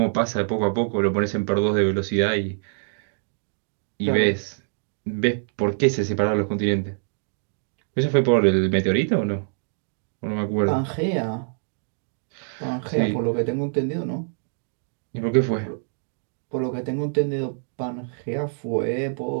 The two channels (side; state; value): left; silent; digital silence